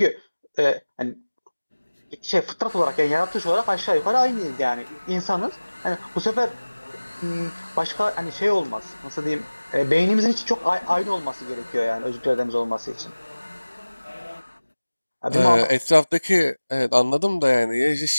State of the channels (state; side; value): inverted; both; correlation -1.00